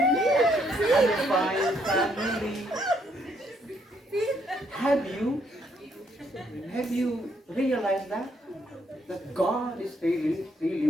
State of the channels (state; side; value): normal; both; correlation 0.71